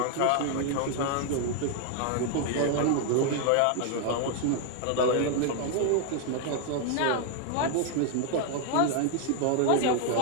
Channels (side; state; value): both; different; correlation 0.00